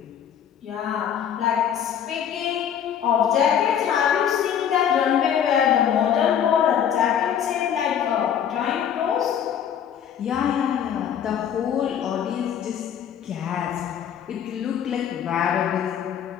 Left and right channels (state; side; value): quieter; right; 9.0 dB